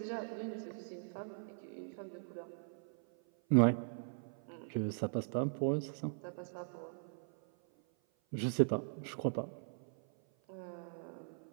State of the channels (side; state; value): left; silent; 51 dB below the other